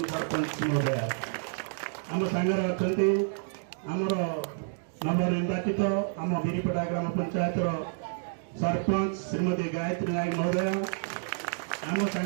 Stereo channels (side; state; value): left; silent; digital silence